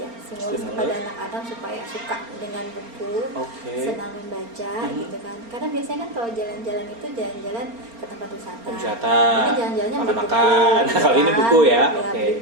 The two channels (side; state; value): left; late; 4.3 ms